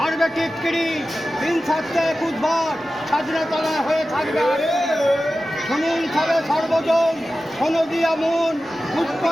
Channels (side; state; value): both; normal; correlation 0.94